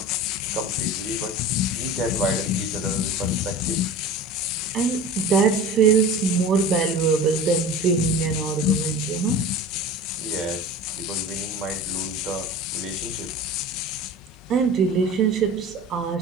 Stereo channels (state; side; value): normal; both; correlation 0.36